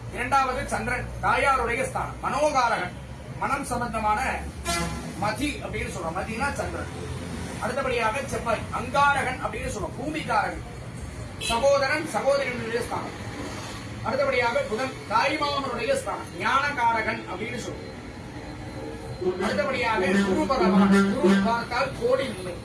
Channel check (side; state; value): both; identical; correlation 1.00